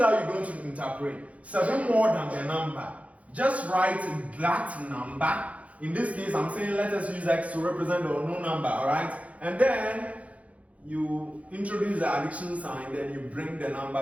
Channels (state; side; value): late; left; 0.066 ms